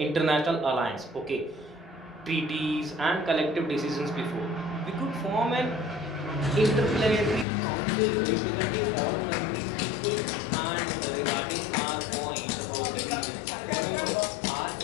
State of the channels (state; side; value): drops out; right; at 7.5 s